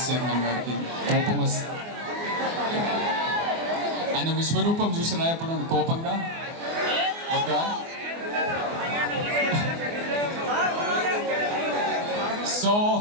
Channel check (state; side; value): late; left; 24 ms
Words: chairman గారికి కోపం వస్తుంది. ఆయన విశ్వరూపం చూసినా ఎప్పుడు కోపంగా ఒక సో